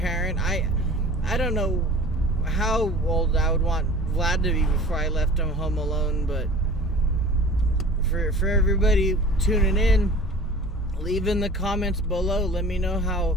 I don't know how old I would want Vlad to be before I left him home alone, but for everybody tuning in, leave in the comments below. Let me know how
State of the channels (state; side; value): normal; both; correlation 0.42